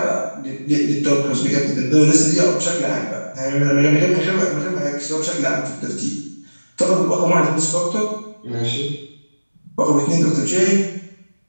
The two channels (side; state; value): both; inverted; correlation -1.00